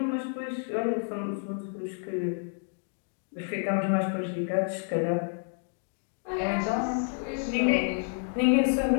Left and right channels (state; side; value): silent; right; 58 dB below the other